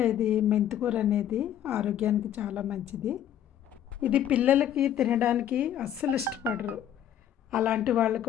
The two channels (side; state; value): right; quieter; 10.4 dB